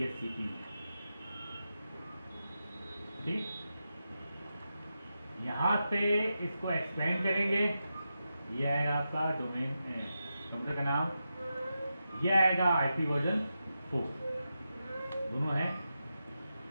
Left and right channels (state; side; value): inverted; both; correlation -0.89